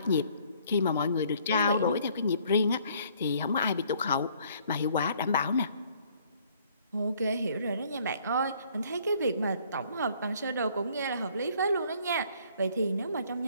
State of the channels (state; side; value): inverted; both; correlation -0.61